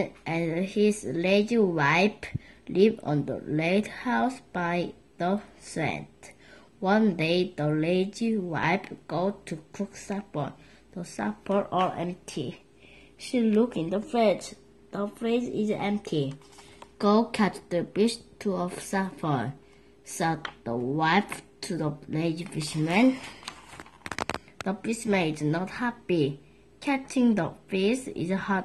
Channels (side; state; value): both; identical; correlation 1.00